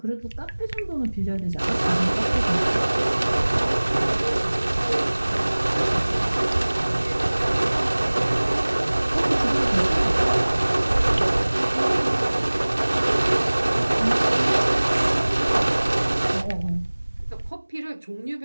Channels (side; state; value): both; inverted; correlation -1.00